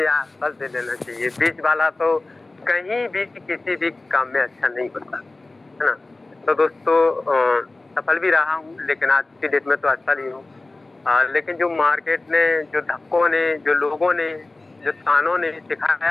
या असफल से लेना चाहिए। बीच वाला तो कहीं भी किसी भी काम में अच्छा नहीं होता, है ना। तो दोस्तों, सफल भी रहा हूँ लेकिन आज की डेट में तो असफल ही हूँ। लेकिन जो मार्केट ने, जो धक्कों ने, जो लोगों ने, जो तानों ने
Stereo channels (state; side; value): quieter; right; 3.1 dB